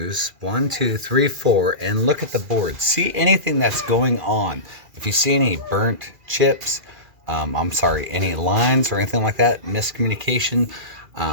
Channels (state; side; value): late; left; 2.4 ms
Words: 1, 2, 3, 4, and look at the board. See anything that's going on. If you see any burnt chips, any lines or anything like that, miscommunication,